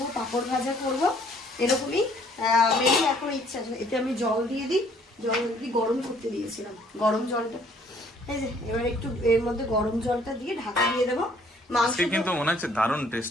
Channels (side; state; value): both; normal; correlation 0.61